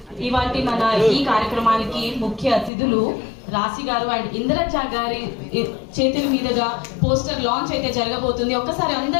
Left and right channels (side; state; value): right; drops out; at 2.7 s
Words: ఇవాటి మన ఈ కార్యక్రమానికి ముఖ్య అతిథులు రాశి గారు అండ్ ఇంద్రజ గారి చేతుల మీదుగా పోస్టర్ లాంచ్ అయితే జరగబోతుంది. ఒక్కసారి